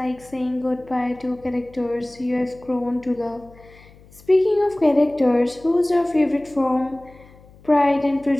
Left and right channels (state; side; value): noise; left; hum, 25 dB below the sound